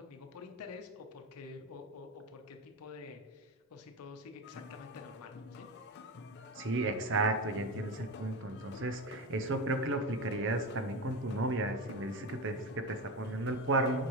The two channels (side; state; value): both; normal; correlation 0.21